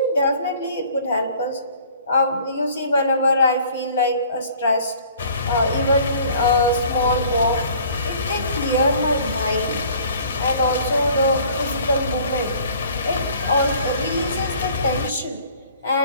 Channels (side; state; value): both; inverted; correlation -0.53